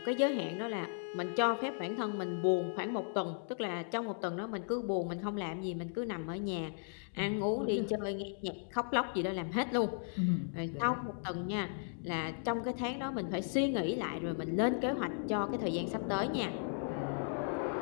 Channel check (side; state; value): right; silent; digital silence